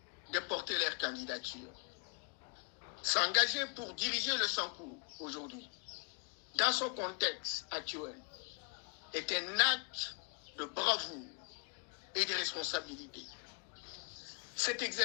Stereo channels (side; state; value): right; quieter; 35.2 dB